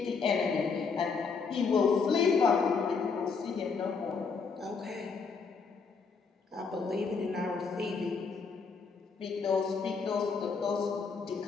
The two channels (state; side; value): quieter; right; 5.1 dB